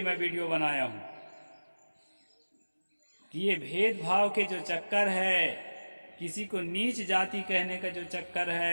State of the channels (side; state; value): both; inverted; correlation -1.00